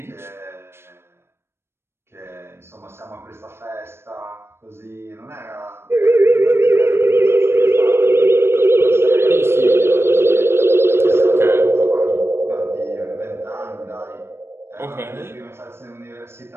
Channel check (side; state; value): left; late; 0.12 ms